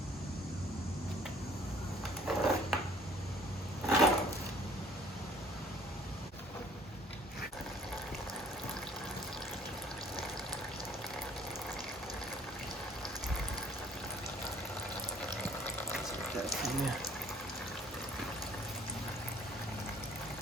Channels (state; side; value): normal; both; correlation 0.56